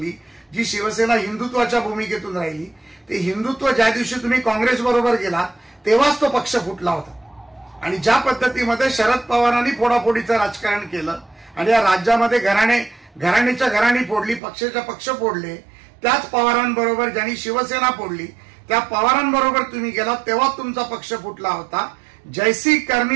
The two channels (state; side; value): drops out; left; at 14.4 s